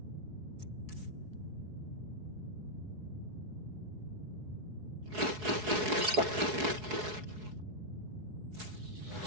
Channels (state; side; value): late; left; 4.7 ms